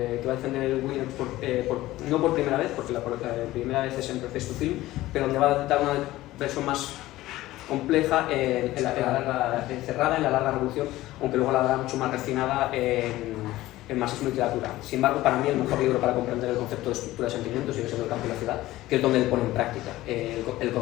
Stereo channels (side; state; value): right; quieter; 16.6 dB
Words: va a defender Williams no por primera vez, porque la primera vez es en Preface to Film, pero donde va a dar una versión más compleja, encerrada en la larga revolución, aunque luego la dará mucho más refinada en marxismo y literatura. Sin embargo, para mí el mejor libro para comprender el concepto de estructura de sentimientos sigue siendo El campo y la ciudad, que es donde él pone en práctica el